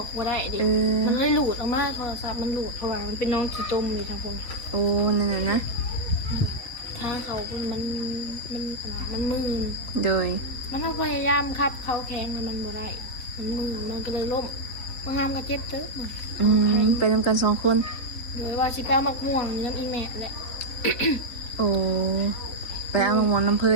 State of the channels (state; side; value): late; right; 4.0 ms